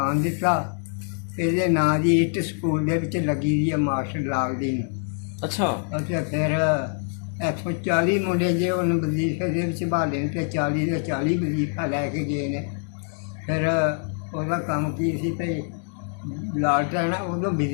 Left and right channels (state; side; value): silent; right; 59 dB below the other